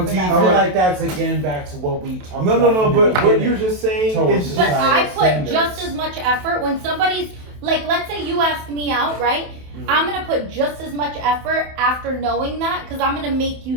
for do you that I feel feel matter. like that's again back to what we talked No, about. no, no. in the But what beginning. you're just saying Towards is. But societal I put standards. just as much effort when somebody's like, let's say you ask me out, right? I'm gonna put just as much effort after knowing that, because I'm gonna make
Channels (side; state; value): left; late; 27 ms